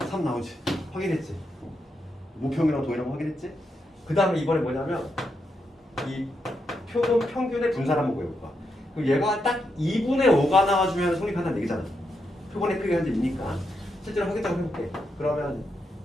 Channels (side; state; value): both; normal; correlation 0.83